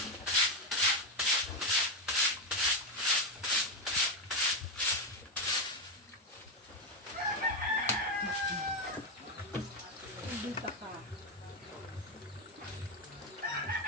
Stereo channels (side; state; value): both; normal; correlation 0.07